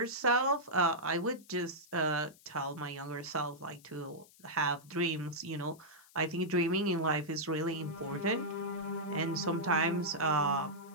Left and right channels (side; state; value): left; noise; hiss, 25 dB below the sound